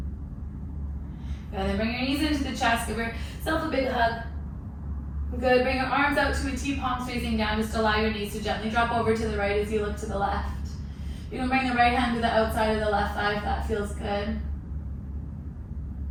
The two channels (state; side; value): identical; both; correlation 1.00